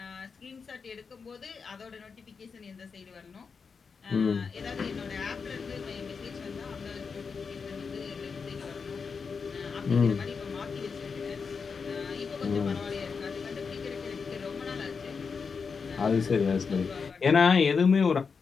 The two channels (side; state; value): right; quieter; 5.4 dB